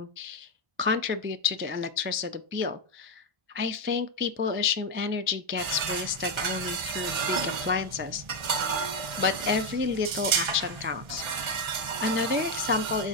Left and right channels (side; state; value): left; late; 1.3 ms